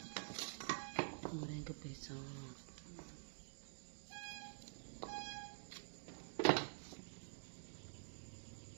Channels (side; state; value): left; silent; digital silence